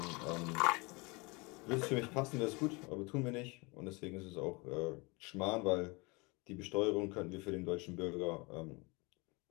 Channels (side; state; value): right; quieter; 27.1 dB